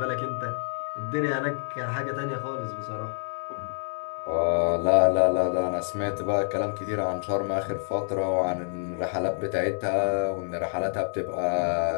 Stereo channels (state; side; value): silent; right; 60 dB below the other